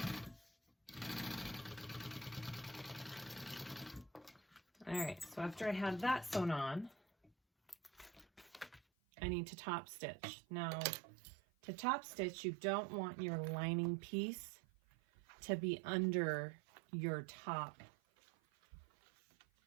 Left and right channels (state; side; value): drops out; left; at 8.8 s